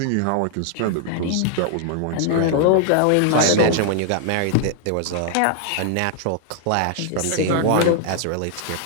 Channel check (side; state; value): both; different; correlation 0.00